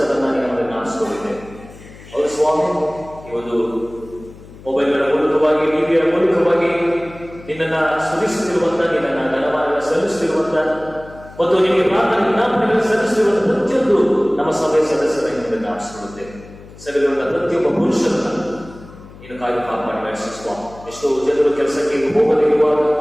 ನಮಗೆ ನಾಶಿಸಿಕೊಂಡಿದ್ದೆ. ಅವರು ಸ್ವಾಮಿ ಈ ಒಂದು ಮೊಬೈಲ್ಗಳ ಮೂಲಕವಾಗಿ, ಟಿವಿಯ ಮೂಲಕವಾಗಿ ನಿನ್ನನ್ನ ಸ್ತುತಿಸುತ್ತಿರುವಂತ, ನಿನ್ನನ್ನ ಘನಮಾನ ಸಲ್ಲಿಸುತ್ತಿರುವಂತ ಮತ್ತು ನಿಮಗೆ ಪ್ರಾರ್ಥನೆ ವಿಜ್ಞಾಪನೆಗಳನ್ನು ಸಲ್ಲಿಸುತ್ತಿರುವಂತ ಪ್ರತಿಯೊಂದು ನಮ್ಮ ಸಭೆಯ ಸದಸ್ಯರ ನಿಮಗೆ ನಾಶಿಸಿಕೊಳ್ಳುತ್ತೇವೆ. ಸಭೆಯಲ್ಲಿರುವ ಪ್ರತಿಯೊಬ್ಬ ಪುರುಷರನ್ನ ನೀನು ಕಾಪಾಡಿ ನಡೆಸುವ. ಎಷ್ಟೋ ಜನರು ಕೆಲಸಕ್ಕೆ ಹೋಗದಿರುವಾಗ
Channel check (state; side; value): noise; left; hum, 19 dB below the sound